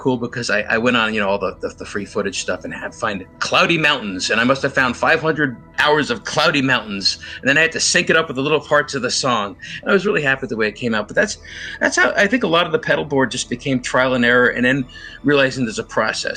because I went on, all the free footage stuff and had to find cloudy mountains. And I must have found 500 hours of cloudy mountains. And then I had to sync it up with the little parts of the song. And I was really happy with the way it came out. But that's how I think a lot of the pedal board just became trial and error, and then realizing there's a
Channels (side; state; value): both; identical; correlation 1.00